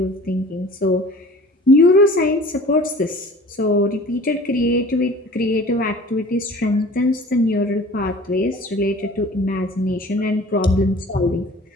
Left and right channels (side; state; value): both; normal; correlation 0.45